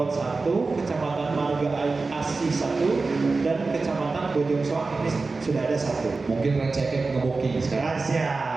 1, Kecamatan Marga Asih 1, dan Kecamatan Bojong Soang ini sudah ada 1. Mungkin receknya nge-booking sekarang.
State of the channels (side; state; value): left; quieter; 3.9 dB